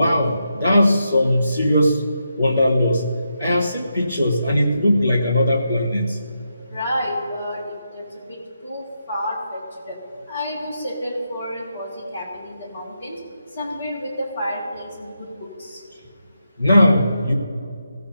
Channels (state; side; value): inverted; both; correlation -0.83